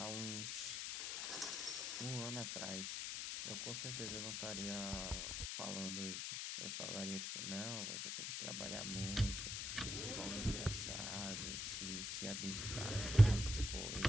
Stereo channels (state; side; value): noise; left; hiss, 2 dB below the sound